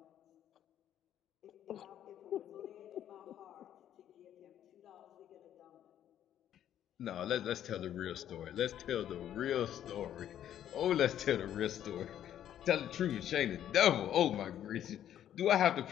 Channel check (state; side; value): quieter; right; 10.8 dB